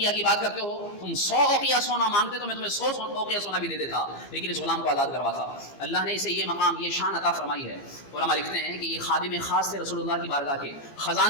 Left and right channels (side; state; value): right; late; 15 ms